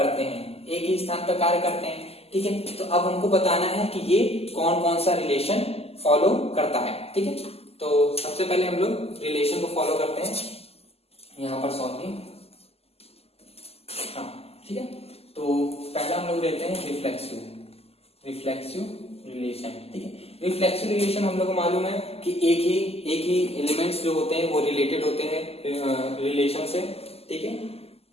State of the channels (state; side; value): late; right; 0.29 ms